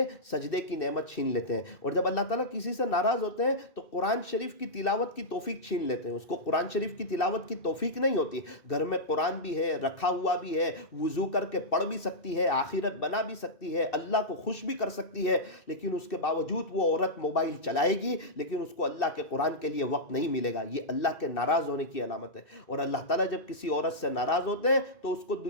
سجدے کی نعمت چھین لیتے ہیں۔ اور جب اللہ تعالیٰ کسی سے ناراض ہوتے ہیں تو قرآن شریف کی تلاوت کی توفیق چھین لیتے ہیں، اس کو قرآن شریف کی تلاوت کی توفیق نہیں ہوتی۔ گھر میں قرآن بھی ہے، رکھا ہوا بھی ہے، وضو کر کے پڑھ بھی سکتی ہے، آخرت بنا منا بھی سکتی ہے, اللہ کو خوش بھی کر سکتی ہے, لیکن اس کے باوجود وہ عورت موبائل چلائے گی, لیکن اس کو اللہ کے قرآن کے لیے وقت نہیں ملے گا. یہ اللہ کے ناراض ہونے کی علامت ہے. اور اللہ تعالیٰ جب کسی عورت سے ناراض ہوتے ہیں تو اس کو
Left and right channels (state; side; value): late; right; 2.6 ms